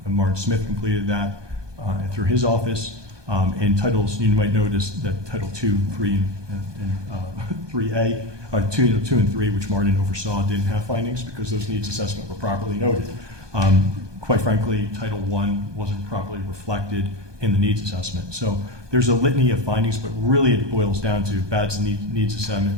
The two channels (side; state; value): left; late; 1.2 ms